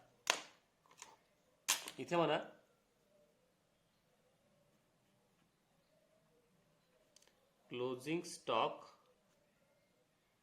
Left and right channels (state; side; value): identical; both; correlation 1.00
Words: इथे म्हणा closing stock